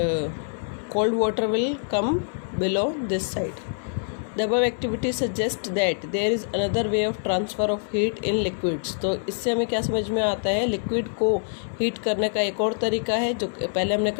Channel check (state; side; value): silent; right; 59 dB below the other